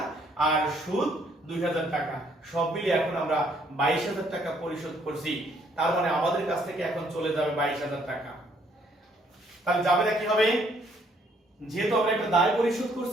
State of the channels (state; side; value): normal; both; correlation 0.66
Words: আর সুদ 2000 টাকা, সব মিলিয়ে এখন আমরা 22,000 টাকা পরিশোধ করছি। তার মানে আমাদের কাছ থেকে এখন চলে যাবে 22,000 টাকা। তাহলে জাবেদা কি হবে? যেহেতু আমরা একটা দায় পরিশোধ